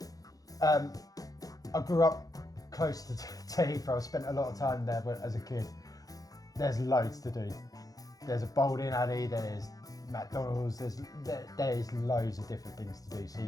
I grew up close to Heathrow. I spent a lot of time there, but as a kid, there's loads to do. There's a bowling alley, there's McDonald's, there's loads of different things to do.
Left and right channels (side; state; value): right; late; 0.17 ms